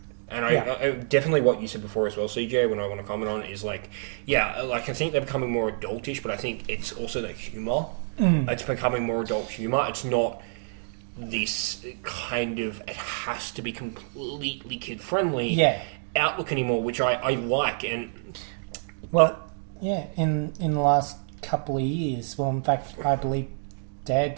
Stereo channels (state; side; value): silent; left; digital silence